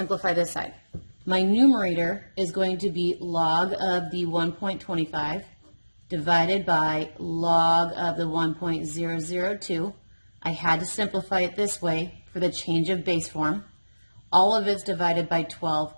this side. My numerator is going to be log of the 1.25 divided by log of the 1.002. I had to simplify it this way for the change of base form. All of it's divided by 12,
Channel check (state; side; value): inverted; both; correlation -1.00